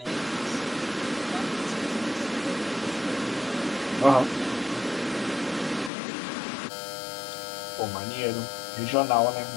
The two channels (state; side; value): drops out; right; at 5.9 s